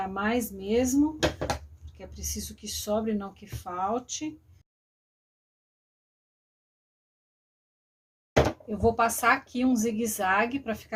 mais mesmo, porque é preciso que sobre, não que falte. Eu vou passar aqui um zigue-zague para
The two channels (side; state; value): both; identical; correlation 1.00